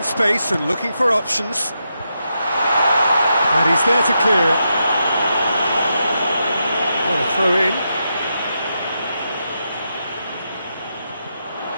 space and looking for options. And he's there to clear it. What a throw in.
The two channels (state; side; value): inverted; both; correlation -0.84